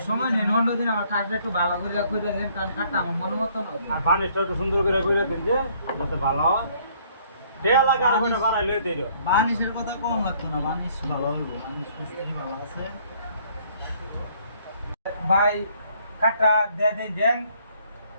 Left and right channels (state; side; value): inverted; both; correlation -0.63